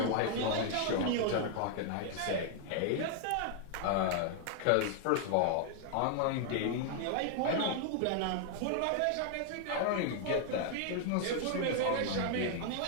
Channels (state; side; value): different; both; correlation 0.00